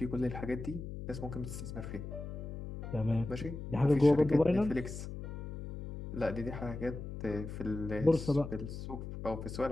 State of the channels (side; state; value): left; noise; hum, 8 dB below the sound